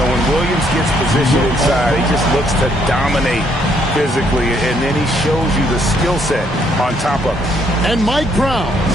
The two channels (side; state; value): both; normal; correlation 0.70